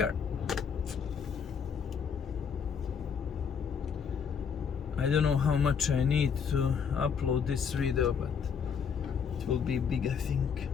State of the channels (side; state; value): right; quieter; 6.7 dB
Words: I don't know how much I need to upload this video, but it will be big, I think,